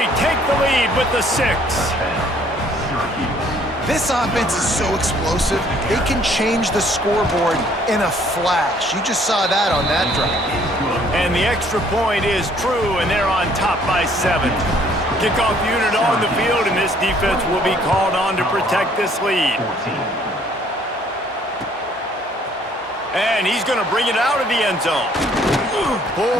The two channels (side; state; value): both; normal; correlation 0.61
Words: take the lead with the 6. This offense is so explosive, they can change the scoreboard in a flash. You just saw that on that drive. And the extra point is true, and they're on top by 7. Kickoff unit on the field, and this defense will be called on to protect this lead. And he's going to bring it out of the end zone.